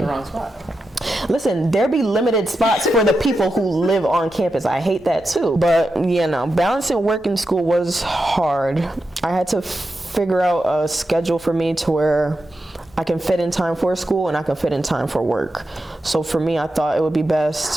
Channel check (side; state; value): both; normal; correlation 0.88